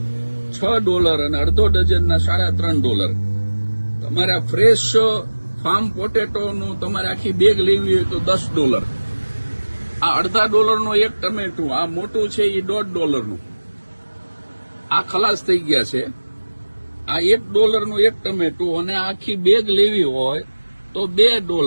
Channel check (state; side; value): inverted; both; correlation -1.00